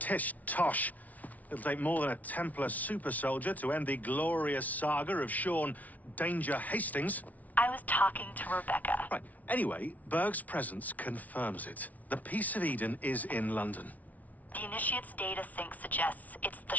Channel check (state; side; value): late; right; 0.073 ms